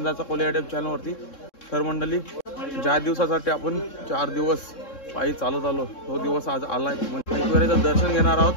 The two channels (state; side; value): late; right; 3.6 ms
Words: कोले युट्यूब चॅनलवरती। तर मंडळी, ज्या दिवसासाठी आपण 4 दिवस पायी चालत आलो तो दिवस आज आलाय। एकविराचं दर्शन घेणार